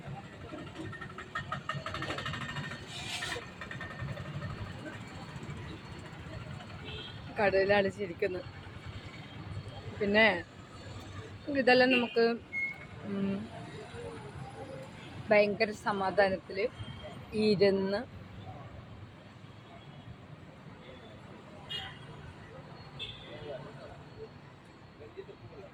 കടയിൽ അടിച്ചിരിക്കുന്നു. പിന്നെ ഇതെല്ലാം നമുക്ക് ഭയങ്കര സമാധാനത്തിൽ ഇരുന്ന്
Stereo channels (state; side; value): identical; both; correlation 1.00